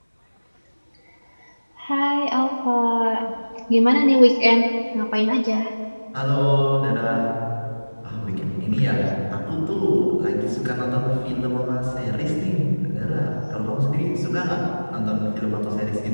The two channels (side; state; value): both; inverted; correlation -1.00